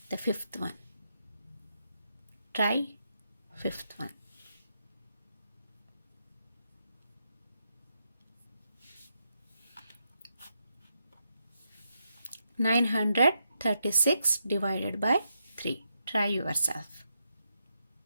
the fifth one. Try fifth one. (936) divided by 3. Try yourself.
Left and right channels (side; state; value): both; inverted; correlation -0.81